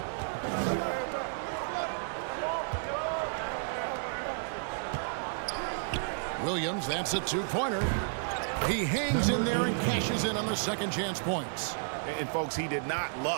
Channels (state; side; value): silent; left; digital silence